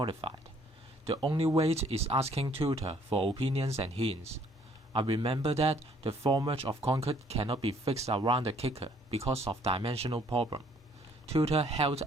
The only way is asking tutor for opinions and hints. I remember that the formwork of concrete cannot be fixed around the kicker because of dimensional problem. Tutor helped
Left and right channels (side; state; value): both; normal; correlation 0.62